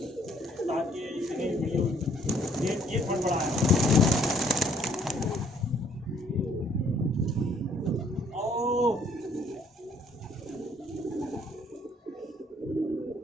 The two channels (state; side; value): normal; both; correlation 0.63